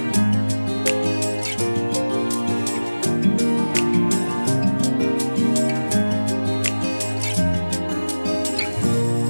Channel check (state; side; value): inverted; both; correlation -1.00